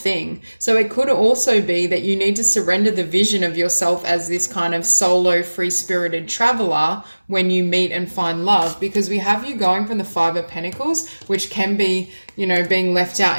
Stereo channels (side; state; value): both; inverted; correlation -1.00